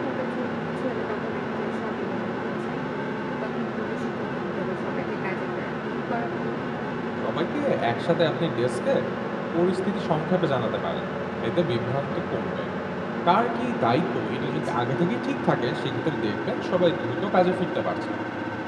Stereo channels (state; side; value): identical; both; correlation 1.00